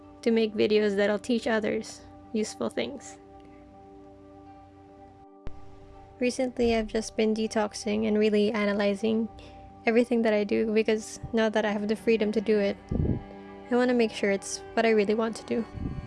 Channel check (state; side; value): identical; both; correlation 1.00